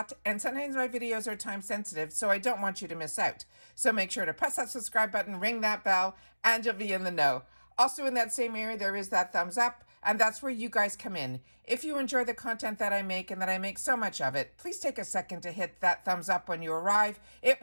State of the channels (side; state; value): both; inverted; correlation -1.00